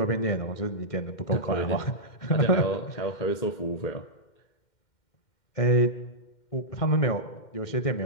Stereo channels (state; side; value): late; right; 2.1 ms